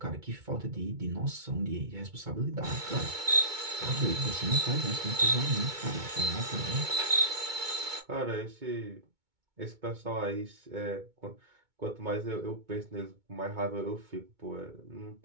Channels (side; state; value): left; late; 2.2 ms